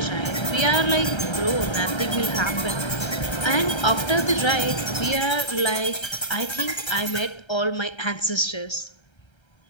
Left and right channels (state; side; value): late; right; 1.3 ms